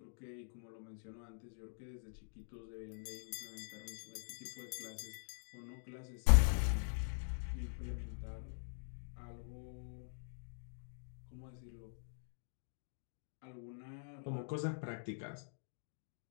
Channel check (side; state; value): right; silent; digital silence